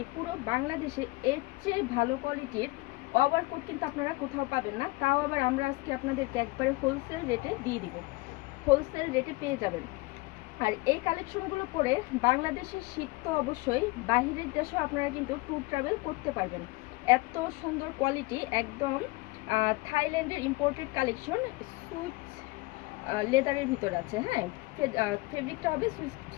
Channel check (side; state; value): right; quieter; 22.6 dB